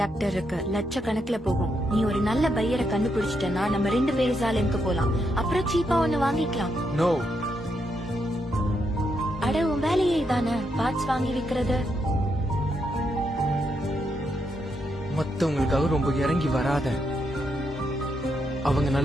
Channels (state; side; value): normal; both; correlation 0.80